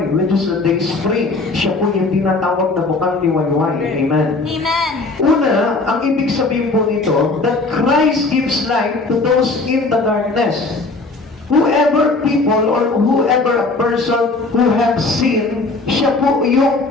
which is the day spring? Siya po yung tinatawag na bukang liwayway. Amen. Amen. Una, ang ibig sabihin po nito, that Christ gives light to those in the darkness. Whoever people or whoever a person who have sinned, siya po yung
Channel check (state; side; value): quieter; right; 3.4 dB